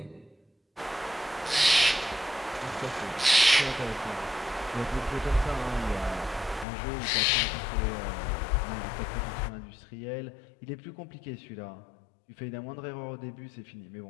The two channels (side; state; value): right; drops out; at 6.7 s